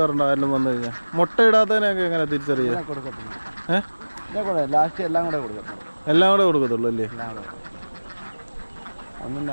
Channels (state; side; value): inverted; both; correlation -1.00